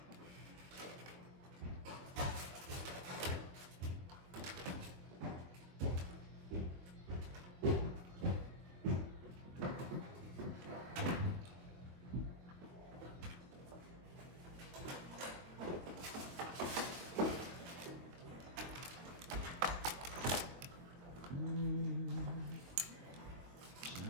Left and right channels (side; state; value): left; late; 22 ms